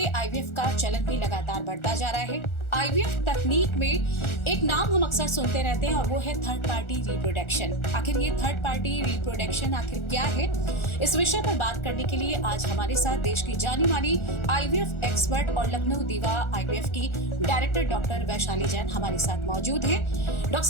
आईवीएफ का चलन भी लगातार बढ़ता जा रहा है। आईवीएफ तकनीक में एक नाम हम अक्सर सुनते रहते हैं और वो है थर्ड पार्टी रिप्रोडक्शन। आखिर ये थर्ड पार्टी रिप्रोडक्शन आखिर क्या है? इस विषय पर बात करने के लिए आज हमारे साथ देश की जानी मानी आईवीएफ एक्सपर्ट और लखनऊ दीवा आईवीएफ की डायरेक्टर डॉक्टर वैशाली जैन हमारे साथ मौजूद हैं। डॉक्टर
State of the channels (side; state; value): right; late; 1.4 ms